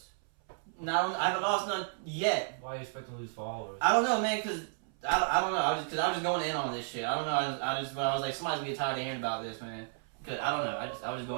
I haven't lost none yet. Why are you expecting to lose followers? I don't know, man, because... I don't know. I was just going in on this shit. I don't know. I was like, somebody's gonna get tired of hearing about this, man. Cause I don't know. I was just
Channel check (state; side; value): silent; left; 56 dB below the other